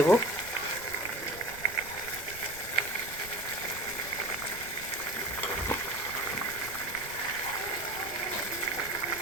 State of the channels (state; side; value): noise; right; rumble, 16 dB below the sound